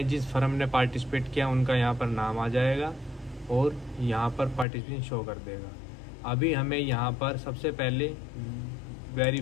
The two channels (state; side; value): drops out; right; at 4.7 s